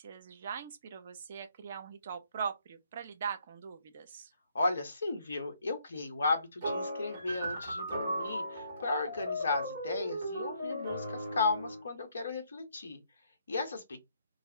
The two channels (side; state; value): both; inverted; correlation -0.71